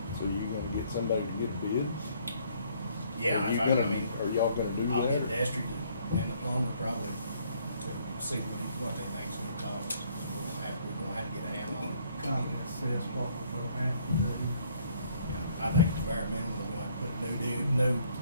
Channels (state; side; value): inverted; both; correlation -0.64